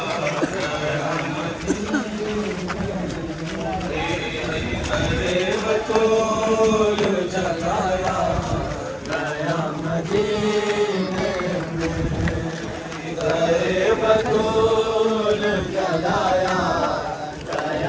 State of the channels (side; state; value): both; identical; correlation 1.00